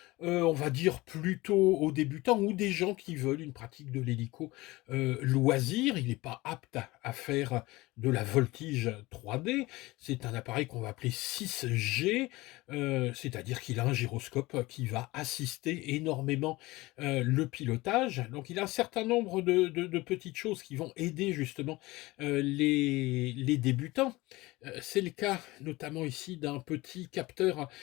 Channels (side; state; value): right; quieter; 20.6 dB